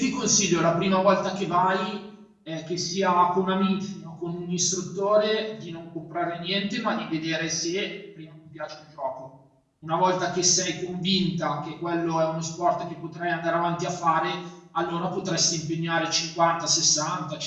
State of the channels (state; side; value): identical; both; correlation 1.00